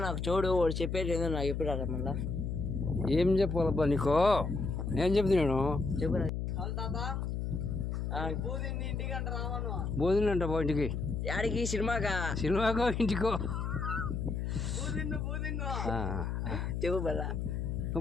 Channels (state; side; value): noise; left; hum, 2 dB below the sound